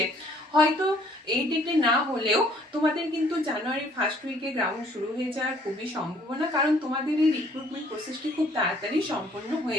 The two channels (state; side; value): normal; both; correlation 0.60